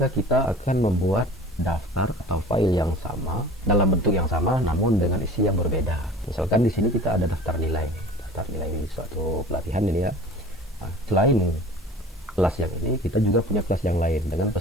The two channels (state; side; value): normal; both; correlation 0.43